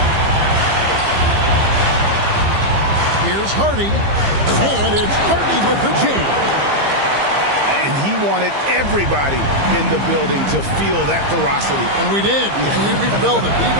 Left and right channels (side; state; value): left; late; 15 ms